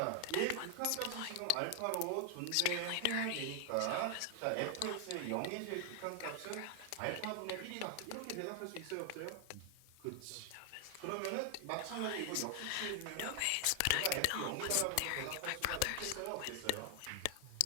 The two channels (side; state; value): both; different; correlation 0.00